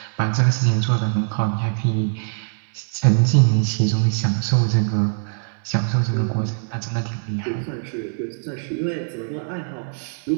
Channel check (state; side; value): silent; left; 64 dB below the other